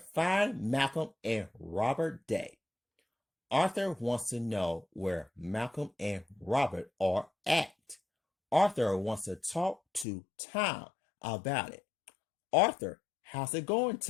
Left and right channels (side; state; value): right; drops out; at 10.1 s